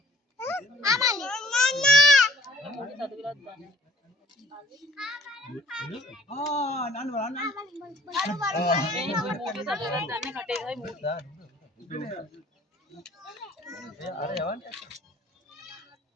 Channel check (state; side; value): normal; both; correlation 0.55